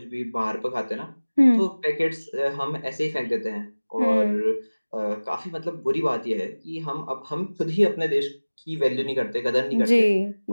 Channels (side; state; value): both; inverted; correlation -1.00